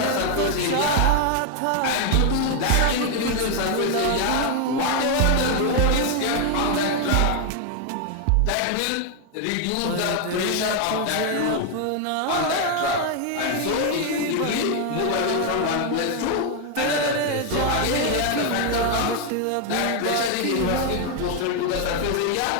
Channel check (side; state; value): both; different; correlation 0.01